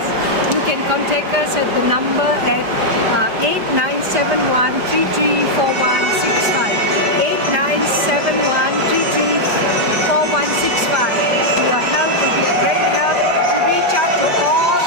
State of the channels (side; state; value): left; late; 5.1 ms